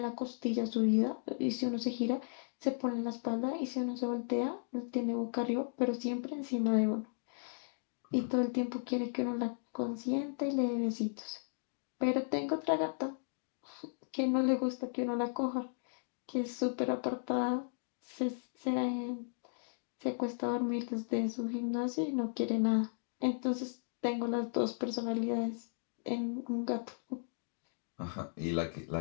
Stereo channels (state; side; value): silent; right; digital silence